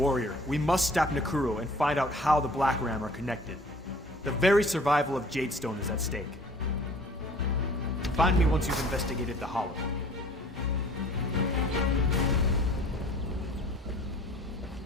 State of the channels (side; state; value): both; normal; correlation 0.51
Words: Warrior, we must stop Nekuro and find out how the Black Ram are connected. The very survival of Jadestone is at stake. Find me once you've investigated the Hollow.